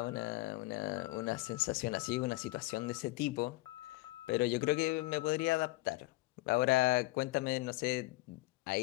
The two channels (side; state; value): right; quieter; 21.2 dB